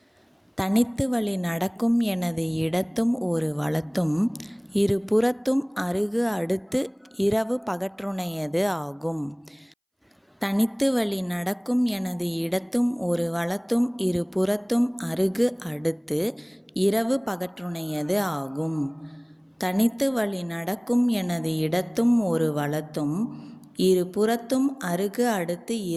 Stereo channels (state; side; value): identical; both; correlation 1.00